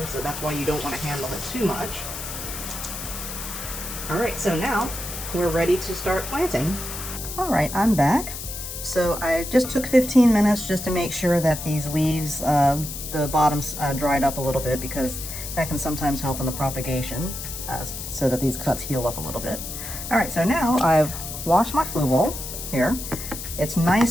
so that's why you don't want to handle it too much. Alright, so now we're ready to start planting. Alright, I'm back. So I just took 15 minutes just to make sure that these leaves, the bottoms dried up a little bit, because that can sometimes help in the propagation, so that these cuts heal up a little bit. Alright, so now I've washed my Fluval here. It's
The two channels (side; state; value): left; noise; hiss, 8 dB below the sound